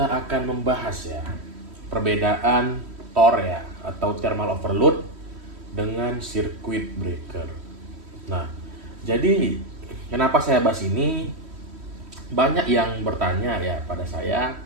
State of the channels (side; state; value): left; late; 3.1 ms